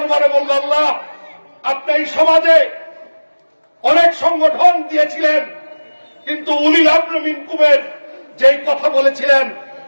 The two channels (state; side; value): inverted; both; correlation -1.00